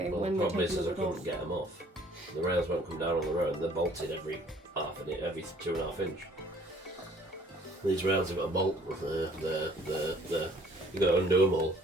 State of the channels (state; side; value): normal; both; correlation 0.57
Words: Well, when the problem we is I couldn't get them off. The rails won't come down on the road. They're bolted every 2.5 inch. These rails have got a bolt. They're you got to undo them all,